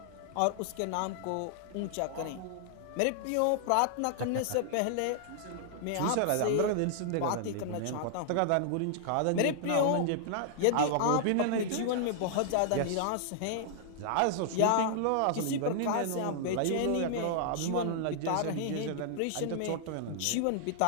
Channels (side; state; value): both; different; correlation -0.01